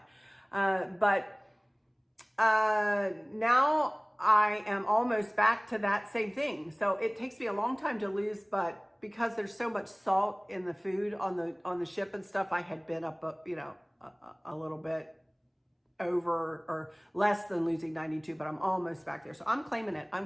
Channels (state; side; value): identical; both; correlation 1.00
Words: Now I am almost back to that same thing. So it takes me a long time to lose, but because there's so much salt in the food on the ship and stuff, I had been up, you know, a little bit over or less than losing 92, but I'm almost back there. So I'm claiming it.